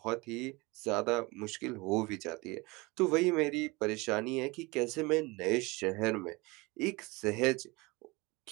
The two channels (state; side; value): quieter; left; 24.4 dB